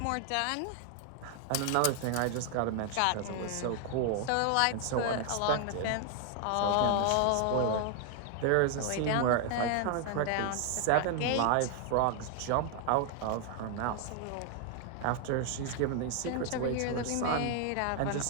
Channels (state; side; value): different; both; correlation 0.00